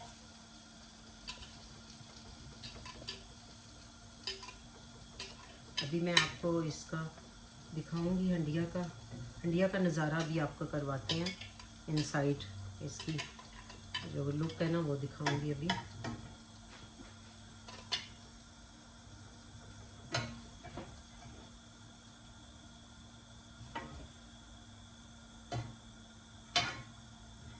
अभी मैं आपको इसका दिखाऊंगी, हंडिया का नज़ारा भी आपको करवाते हैं। इनसाइड इसकी जो लुक है ना वो दिखाऊंगी अभी।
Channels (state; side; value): identical; both; correlation 1.00